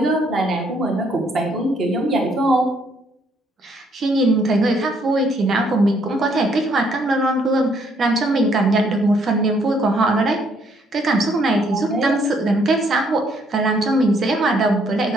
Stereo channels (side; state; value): both; normal; correlation 0.68